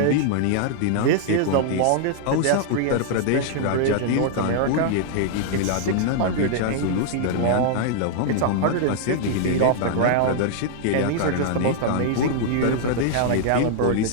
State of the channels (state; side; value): different; both; correlation -0.01